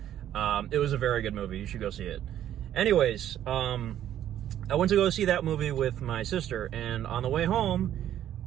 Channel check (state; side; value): quieter; left; 11.3 dB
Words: It was a very good movie. You should go see it. Anyways, I went to go see that movie with my sister, and on the way home,